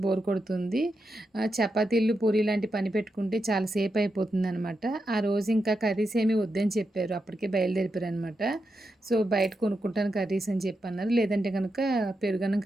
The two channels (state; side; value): normal; both; correlation 0.86